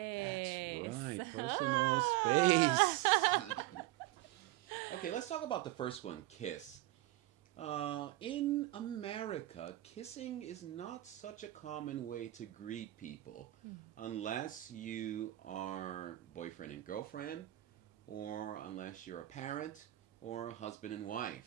That's right, personal space. Okay, let's talk about the first one, kiss. In America, kissing is not such a common way to greet people unless you are boyfriend and girlfriend, or unless you're a parent or a husband and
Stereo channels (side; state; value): left; quieter; 16.7 dB